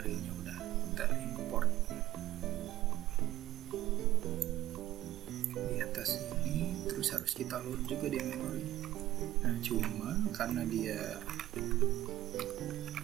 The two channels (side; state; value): left; quieter; 14.5 dB